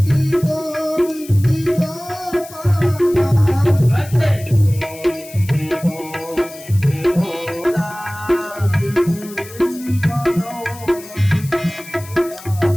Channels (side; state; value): left; noise; hiss, 17 dB below the sound